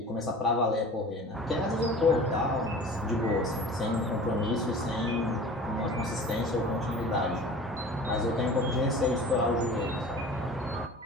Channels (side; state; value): both; normal; correlation 0.41